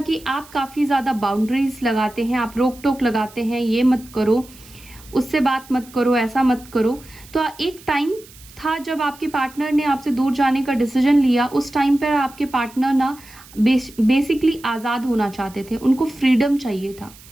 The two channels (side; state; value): right; noise; hiss, 22 dB below the sound